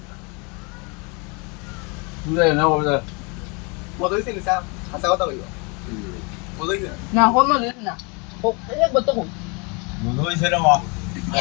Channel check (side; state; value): right; quieter; 31.3 dB